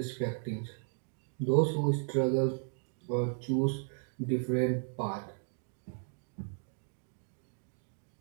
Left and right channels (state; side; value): silent; left; 54 dB below the other